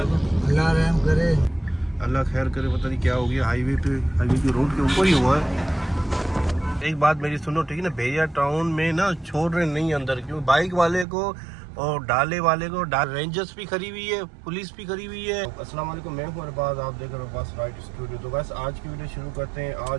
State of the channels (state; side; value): drops out; left; at 11.1 s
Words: रहम करे, अल्लाह खैर करे। पता नहीं क्या हो गया, हाईवे की रोड के ऊपर ही हुआ है। एक बात मेरी सुनो, ठीक है ना, भेड़िया टाउन में ना छोड़ रहे नहीं अंदर, क्यों? बाइक वाले को और डाले वाले को, रेंजर्स भी खड़ी हुई है, पुलिस भी खड़ी हुई है। अस्सलाम वालेकुम, मैं हूं अरबाज, आप देख रहे हो अरबाज राइड स्टूडियो। तो बस आज की वीडियो शुरू करते हैं।